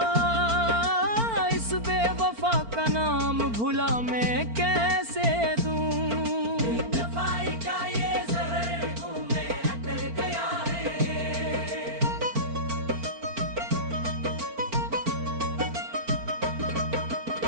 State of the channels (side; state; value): left; late; 4.4 ms